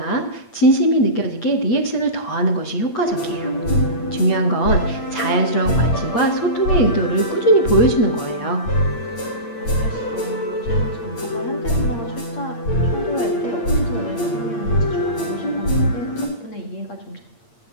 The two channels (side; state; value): right; late; 8.6 ms